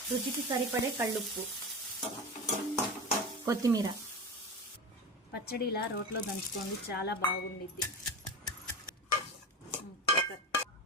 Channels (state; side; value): normal; both; correlation 0.25